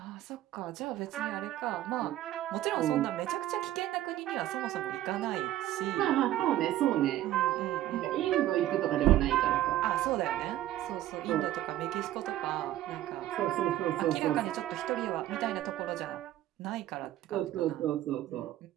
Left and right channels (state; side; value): quieter; left; 13.8 dB